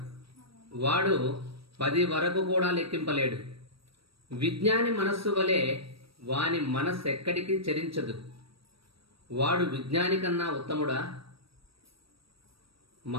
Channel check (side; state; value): left; late; 0.76 ms